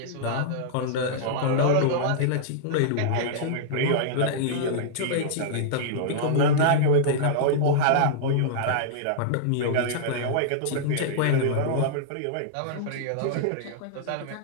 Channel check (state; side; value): different; both; correlation -0.02